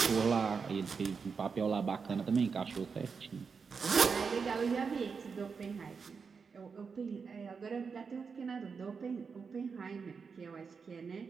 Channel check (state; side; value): quieter; left; 5.5 dB